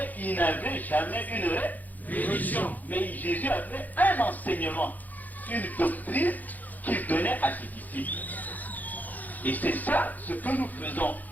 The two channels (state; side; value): late; right; 0.082 ms